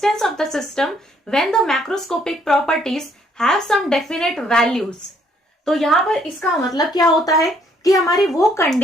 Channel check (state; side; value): normal; both; correlation 0.67